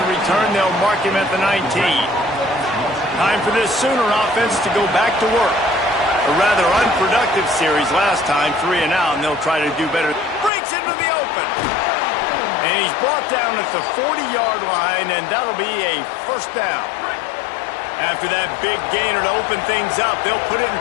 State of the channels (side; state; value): right; drops out; at 10.5 s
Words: return. They'll mark him at the 19. Time for this Sooner offense to go back to work. A rather unproductive series last time, 3 and out, and they'll try to do better. Breaks into the open. And he's brought down at the 40-yard line, and that'll be a first down. After that big gainer to open things up, they'll put it in